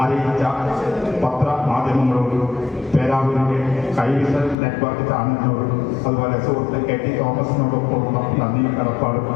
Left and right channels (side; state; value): right; drops out; at 4.5 s